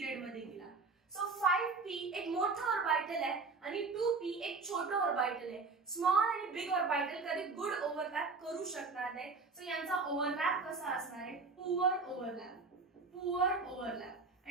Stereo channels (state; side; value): quieter; left; 4.1 dB